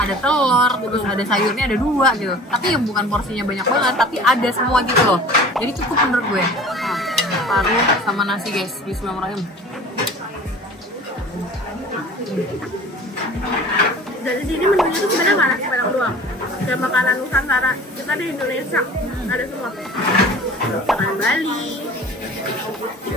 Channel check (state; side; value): normal; both; correlation 0.43